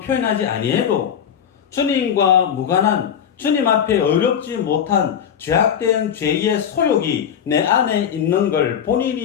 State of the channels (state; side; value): quieter; right; 8.5 dB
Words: 표현하지 아니해도 주님과 무관한 주님 앞에 어렵지 못한 죄악된 죄의 소욕이 내 안에 있는 걸